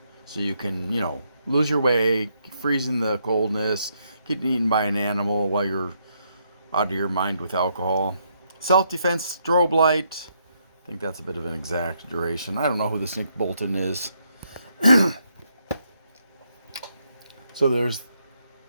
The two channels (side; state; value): both; inverted; correlation -0.76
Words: so you can lose your way, freeze in the coldness, getting eaten by an animal while you're out of your mind with alcohol. Self-defense strobe light. I think that's a bit of an exaggeration. I don't know who this Nick Bolton is. So there's